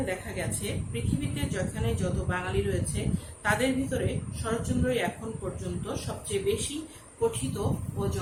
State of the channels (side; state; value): both; identical; correlation 1.00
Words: দেখা গেছে পৃথিবীতে যেখানে যত বাঙালি রয়েছে তাদের ভিতরে শরৎচন্দ্রই এখন পর্যন্ত সবচেয়ে বেশি পঠিত ও